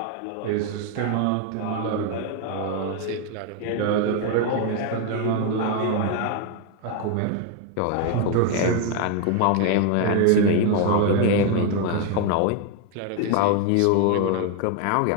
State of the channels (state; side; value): different; both; correlation 0.01